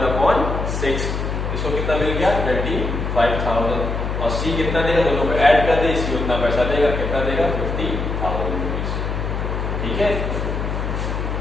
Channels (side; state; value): left; noise; hum, 2 dB below the sound